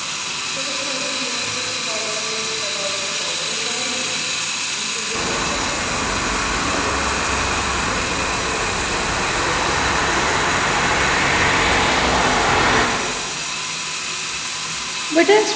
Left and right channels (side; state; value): both; identical; correlation 1.00